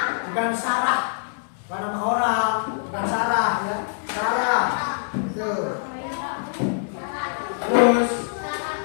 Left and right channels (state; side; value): silent; right; 62 dB below the other